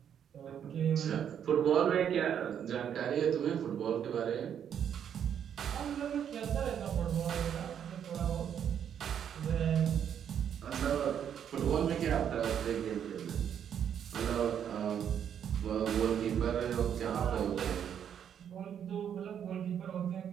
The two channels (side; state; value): left; quieter; 8.8 dB